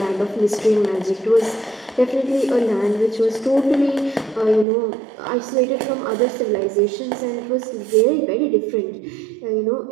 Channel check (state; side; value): drops out; left; at 4.7 s